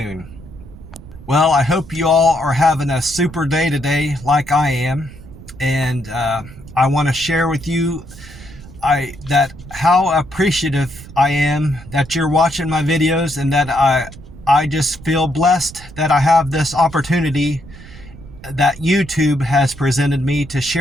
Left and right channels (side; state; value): right; noise; rumble, 17 dB below the sound